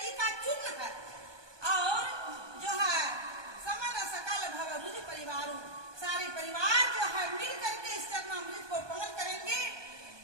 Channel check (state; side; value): late; left; 1.2 ms